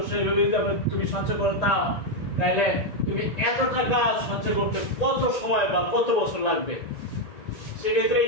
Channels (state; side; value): late; right; 1.9 ms